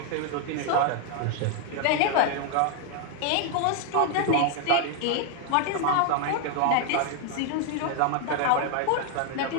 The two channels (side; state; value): both; different; correlation 0.00